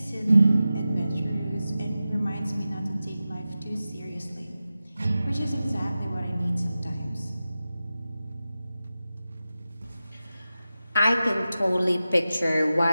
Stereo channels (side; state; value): both; inverted; correlation -0.94